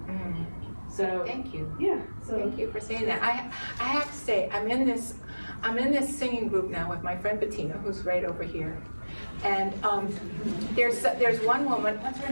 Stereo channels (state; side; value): inverted; both; correlation -1.00